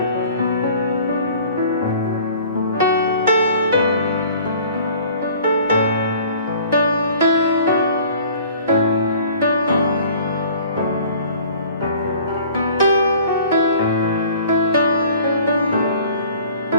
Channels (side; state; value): both; inverted; correlation -0.50